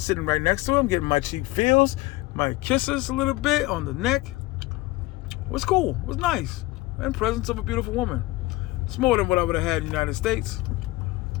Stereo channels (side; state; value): right; quieter; 19.9 dB